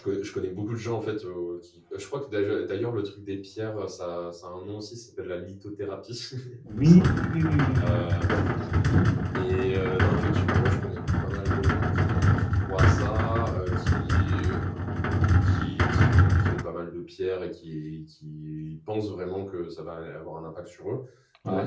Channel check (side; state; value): both; identical; correlation 1.00